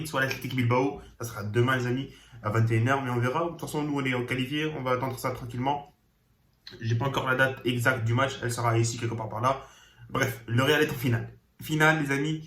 soit l'Atlético Bilbao. Ça sera demain, les amis, à 21h, mais on verra. De toute façon, nous, on est qualifiés. On va attendre ça tranquillement. J'ai pas encore la date exacte du match. Elle sera ici, quelque part par là. Bref, le Real est en finale. Finale, les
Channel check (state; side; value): identical; both; correlation 1.00